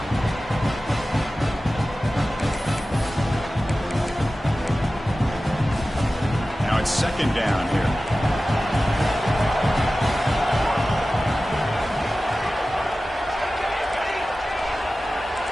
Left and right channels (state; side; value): normal; both; correlation 0.95